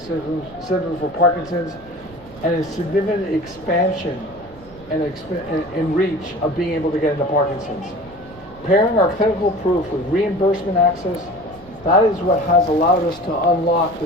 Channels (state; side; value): noise; right; rumble, 21 dB below the sound